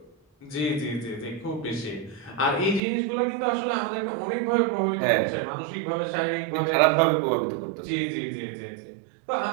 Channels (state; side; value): drops out; left; at 2.8 s